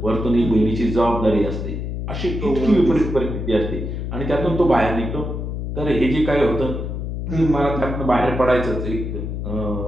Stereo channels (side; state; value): left; noise; hum, 4 dB below the sound